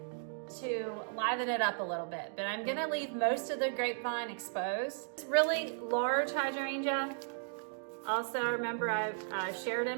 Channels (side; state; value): left; silent; digital silence